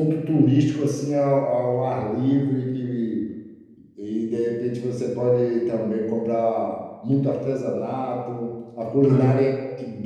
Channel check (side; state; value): both; identical; correlation 1.00